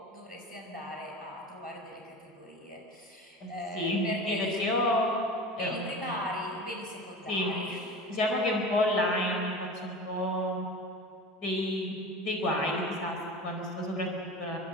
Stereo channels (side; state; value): both; normal; correlation 0.34